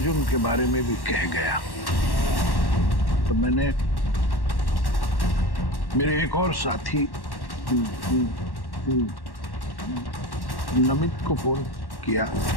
के बारे में भी कह गया। तो मैंने मेरे एक और साथी नमित को फोन किया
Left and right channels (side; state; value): right; late; 1.1 ms